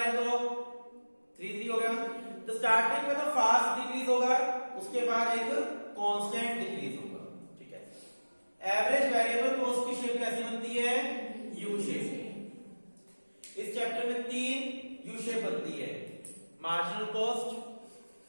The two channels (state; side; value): inverted; both; correlation -1.00